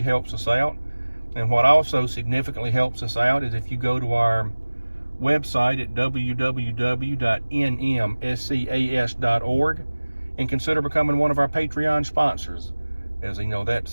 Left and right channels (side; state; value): both; inverted; correlation -1.00